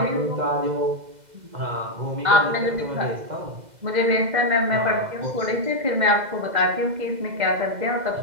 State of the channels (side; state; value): left; late; 2.0 ms